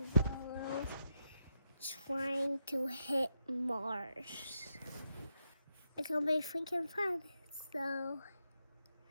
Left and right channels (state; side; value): inverted; both; correlation -0.83